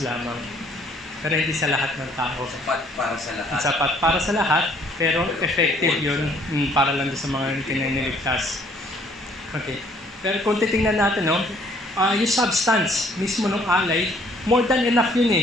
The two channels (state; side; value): normal; both; correlation 0.61